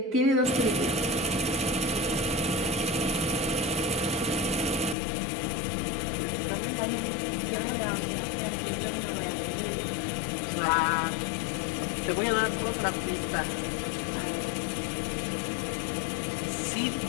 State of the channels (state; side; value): drops out; right; at 5.0 s